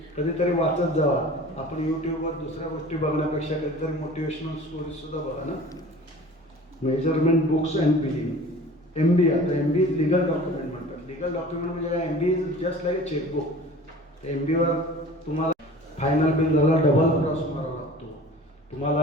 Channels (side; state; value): both; normal; correlation 0.43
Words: कधीतरी वाचत जावा. आपण यूट्यूबवर दुसऱ्या गोष्टी बघण्यापेक्षा कधीतरी मोटिवेशनल स्टोरीजसुद्धा बघा ना. Measurement books and billing, MB. आता MB लिगल डॉक्युमेंट म्हणतात. लिगल डॉक्युमेंट म्हणजे काय, MB is just like a chequebook. MBवर तुम्हाला फायनल बिल झाला डबल क्रॉस मारावा लागतो,